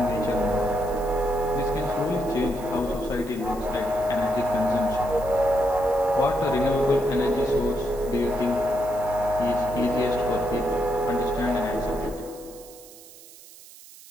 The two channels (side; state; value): right; noise; hiss, 20 dB below the sound